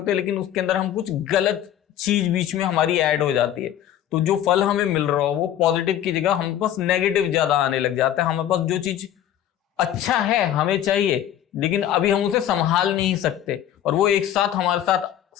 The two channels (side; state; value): right; quieter; 11.2 dB